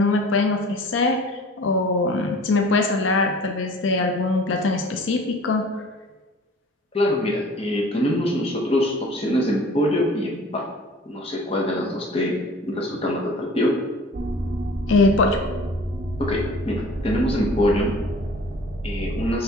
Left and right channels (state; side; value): normal; both; correlation 0.46